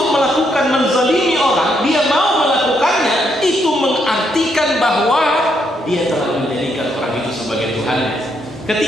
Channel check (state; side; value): normal; both; correlation 0.76